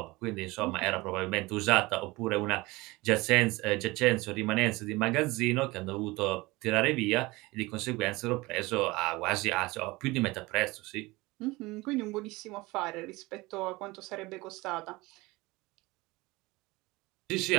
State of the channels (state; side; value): quieter; left; 22.0 dB